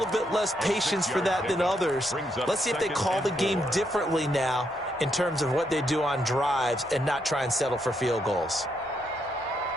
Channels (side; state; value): both; normal; correlation 0.78